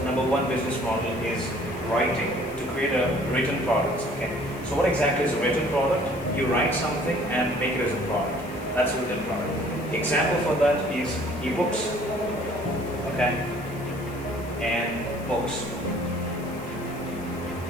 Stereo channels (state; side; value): noise; left; hiss, 21 dB below the sound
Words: number one business model is writing, to create a written product. Okay. So what exactly is a written product? You write something and make it as a product. That's a written product. Example for that is ebooks, okay, and books.